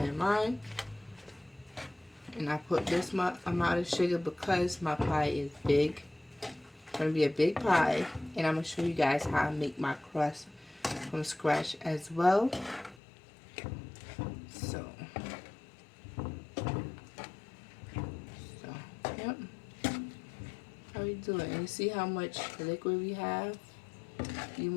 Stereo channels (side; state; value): right; drops out; at 13.0 s